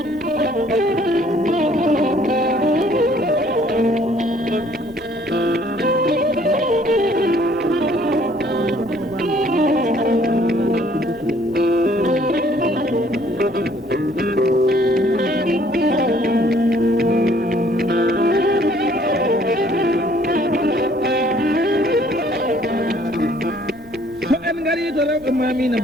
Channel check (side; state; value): both; normal; correlation 0.60